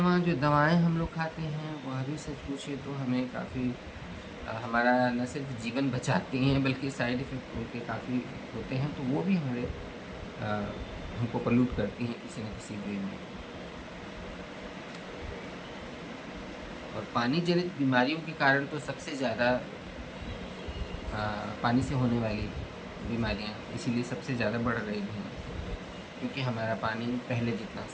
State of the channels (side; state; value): both; identical; correlation 1.00